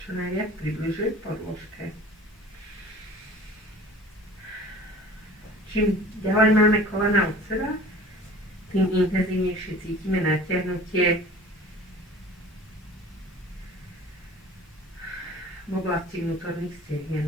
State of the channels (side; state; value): both; normal; correlation 0.44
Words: čo najviac približuje k podložke. Čím ďalej máme kolena od seba, tým intenzívnejšie cítime natiahnutie v oblasti vnútorných